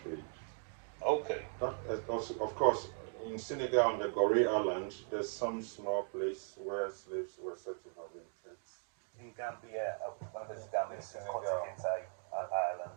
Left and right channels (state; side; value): silent; left; 52 dB below the other